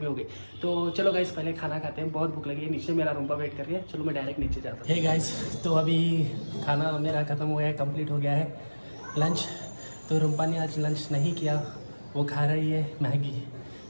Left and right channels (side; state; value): both; inverted; correlation -1.00